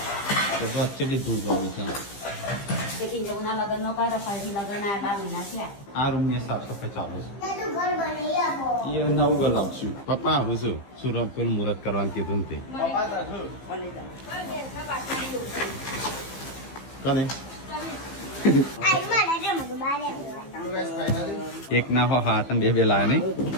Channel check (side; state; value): right; late; 15 ms